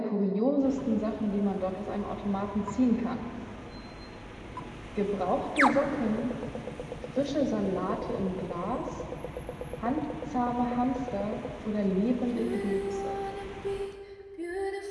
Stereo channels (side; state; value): both; identical; correlation 1.00